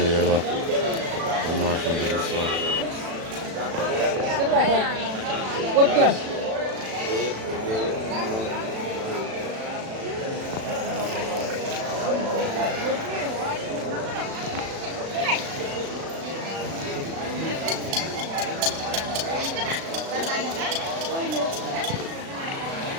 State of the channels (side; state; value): left; late; 36 ms